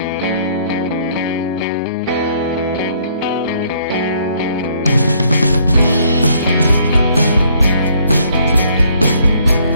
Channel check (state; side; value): inverted; both; correlation -0.65